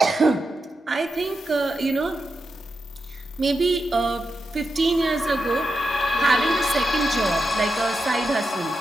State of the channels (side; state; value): both; normal; correlation 0.88